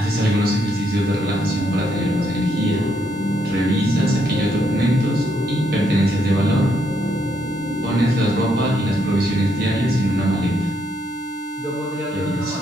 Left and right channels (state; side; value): normal; both; correlation 0.75